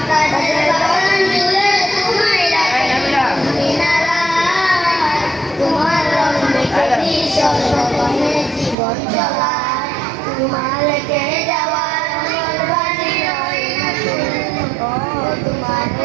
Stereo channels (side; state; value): left; drops out; at 8.8 s